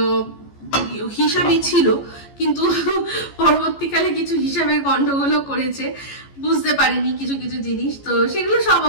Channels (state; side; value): late; right; 14 ms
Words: হিসাবই ছিল, কিন্তু পরবর্তীকালে কিছু হিসাবের গন্ডগোলও করেছে, বুঝতে পারিনি কিছু কিছু জিনিস। তো সেগুলো সব